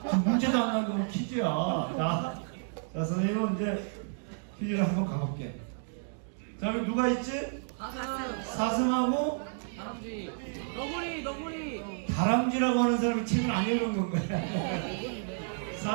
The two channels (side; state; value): left; silent; digital silence